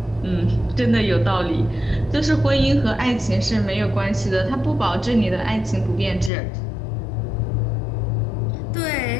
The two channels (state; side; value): drops out; right; at 6.3 s